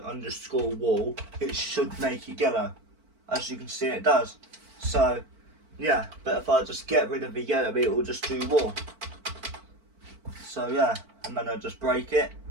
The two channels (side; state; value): left; late; 4.5 ms